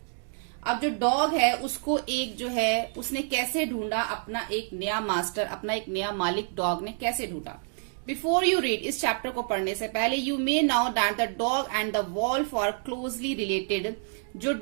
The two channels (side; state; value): left; silent; 57 dB below the other